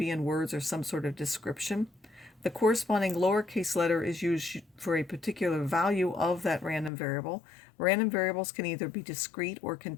in words or some sort of description. The corresponding lowercase letter is used for a particular value of that random variable. Random variables can either be discrete or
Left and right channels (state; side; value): drops out; right; at 6.9 s